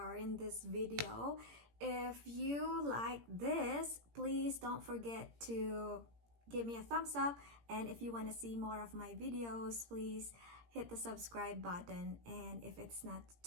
in this video. If you like this, please don't forget to give me a thumbs up, and if you want to see more of my videos, please hit the subscribe button. And if it's not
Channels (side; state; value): left; late; 17 ms